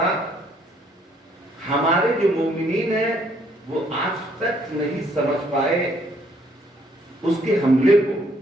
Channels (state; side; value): normal; both; correlation 0.66